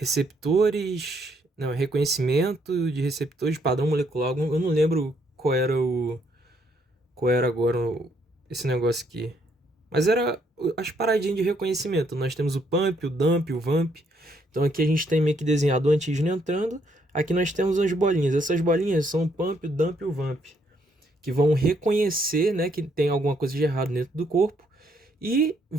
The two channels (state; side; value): normal; both; correlation 0.71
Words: não, reconhecimento de receptores de padrão molecular. Eu não lembro qual era agora esse negócio aqui. Mas era as paradinhas de reconhecimento. Nós temos o pump, o dump, o vamp. Então aqui a gente tem meio que desenhado o antígeno entrando. Aqui nós temos as bolinhas. Essas bolinhas são o pump, o dump e o vamp, que vão reconhecer, né, que tem alguma coisa de errado dentro do corpo e